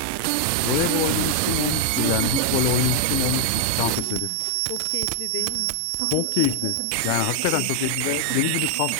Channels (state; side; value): different; both; correlation 0.00